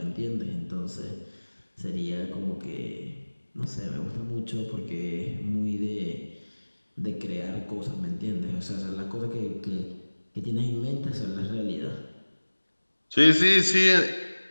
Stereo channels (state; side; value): inverted; both; correlation -1.00